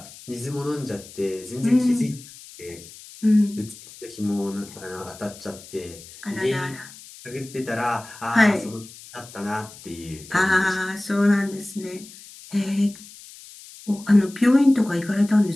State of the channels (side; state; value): left; noise; hiss, 18 dB below the sound